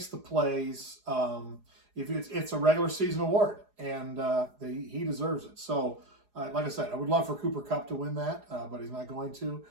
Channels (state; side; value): late; left; 4.8 ms